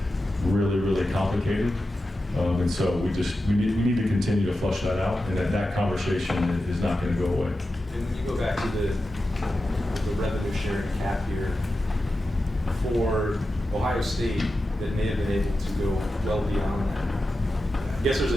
really, really complicated. And so we need to continue to flush that out, and that conversation is not going to go away. And when you go back to the revenue sharing cap here, for Ohio State that may have been able to go well beyond that, I guess there's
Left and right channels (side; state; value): both; normal; correlation 0.91